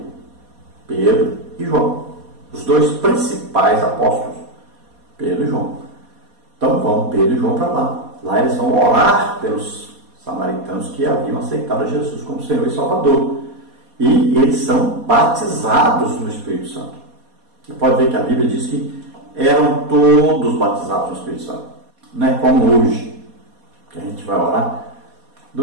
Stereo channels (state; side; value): late; left; 4.2 ms